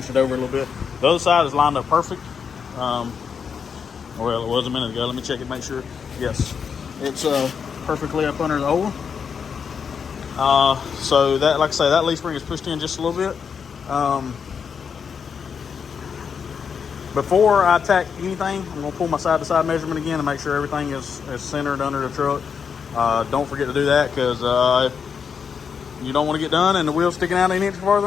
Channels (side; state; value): right; quieter; 6.6 dB